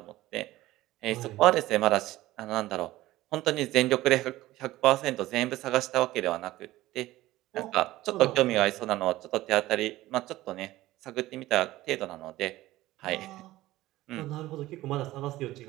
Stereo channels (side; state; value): left; quieter; 16.8 dB